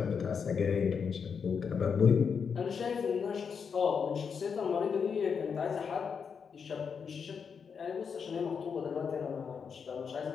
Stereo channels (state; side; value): quieter; right; 6.3 dB